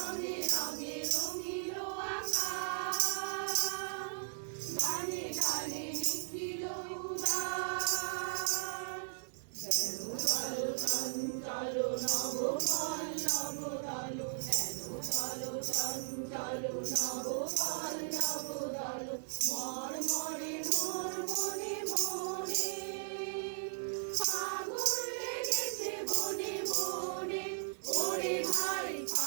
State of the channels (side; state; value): left; silent; digital silence